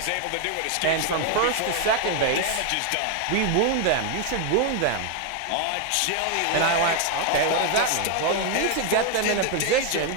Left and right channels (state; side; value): different; both; correlation 0.00